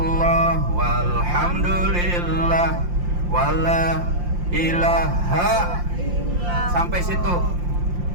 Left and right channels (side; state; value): left; late; 5.7 ms